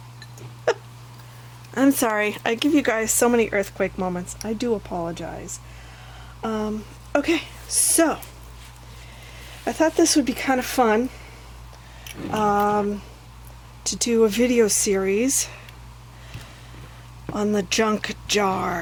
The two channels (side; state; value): both; identical; correlation 1.00